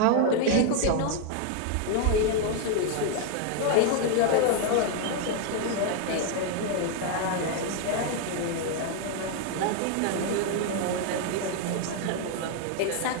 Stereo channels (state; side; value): different; both; correlation 0.00